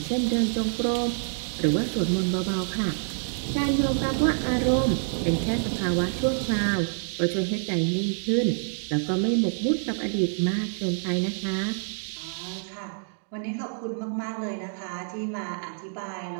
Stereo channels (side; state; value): left; silent; digital silence